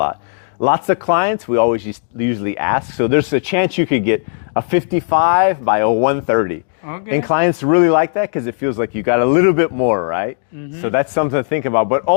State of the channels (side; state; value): right; silent; digital silence